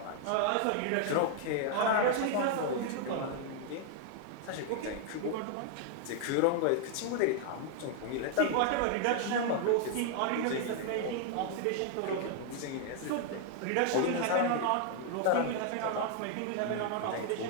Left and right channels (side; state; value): both; different; correlation 0.00